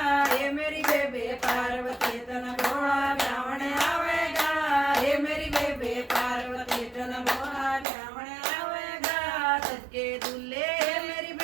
हे मेरी बेबे पार्वती तन भोला ब्राह्मण आवेगा। हे मेरी बेबे पार्वती तन भोला ब्राह्मण आवेगा। सबके दूल्हे मेरी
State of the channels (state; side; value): drops out; left; at 7.9 s